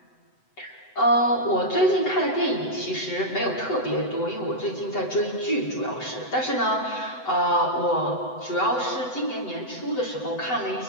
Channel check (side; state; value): right; late; 7.9 ms